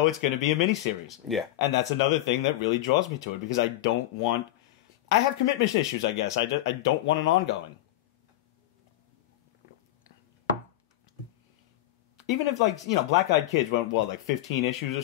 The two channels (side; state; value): right; quieter; 14.9 dB